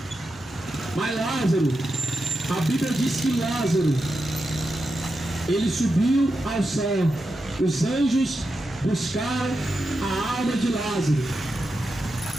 Mas Lázaro, a Bíblia diz que Lázaro, ele subiu ao céu. Os anjos buscaram a alma de Lázaro.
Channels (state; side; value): normal; both; correlation 0.88